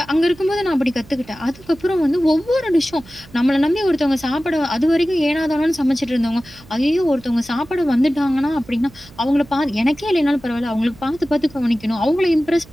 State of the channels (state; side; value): noise; right; hum, 23 dB below the sound